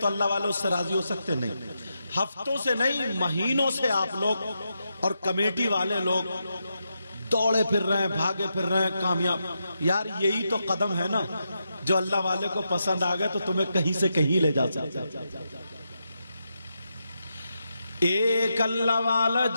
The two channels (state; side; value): inverted; both; correlation -0.85